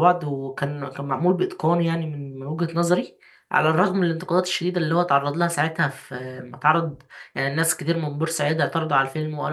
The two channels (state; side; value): identical; both; correlation 1.00